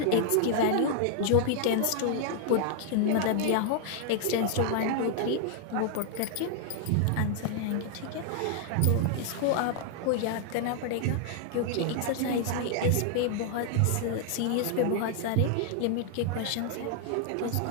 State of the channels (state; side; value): different; both; correlation 0.00